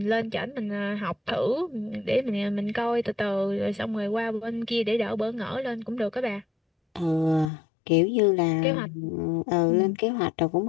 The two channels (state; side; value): drops out; right; at 7.5 s